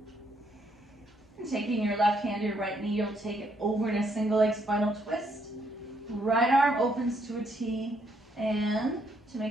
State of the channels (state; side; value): normal; both; correlation 0.73